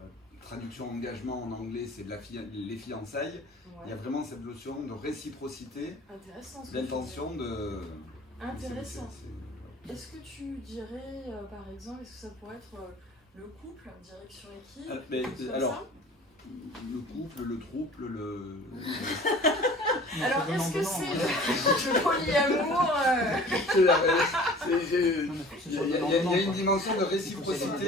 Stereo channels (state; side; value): normal; both; correlation 0.45